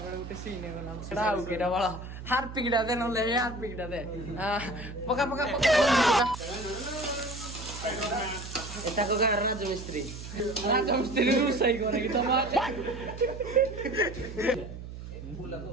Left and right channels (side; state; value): right; noise; hum, 11 dB below the sound